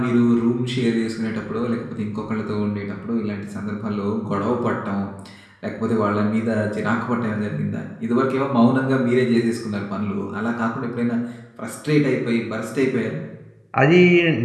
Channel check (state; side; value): identical; both; correlation 1.00